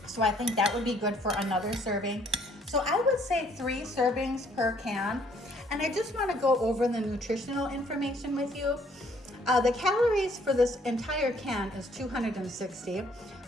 So I think that would be good for another serving. So I would say 3 servings per can. And I just want to go over the nutritional information with you. The calories for this entire can is 260,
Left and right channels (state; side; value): normal; both; correlation 0.63